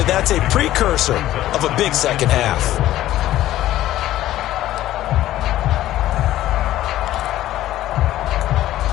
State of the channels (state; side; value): quieter; right; 14.1 dB